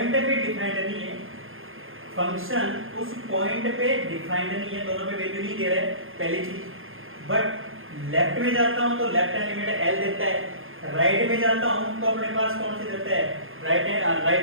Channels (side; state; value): left; late; 0.60 ms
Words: पे डिफाइंड नहीं है, फंक्शन उस पॉइंट पे डिफाइंड नहीं है, दोनों पे वैल्यू नहीं दे रहा है, पहली चीज। बट लेफ्ट में जाता हूं तो लेफ्ट हैंड लिमिट एल देता है, राइट में जाता हूं तो अपने पास कौन सी देता है, राइट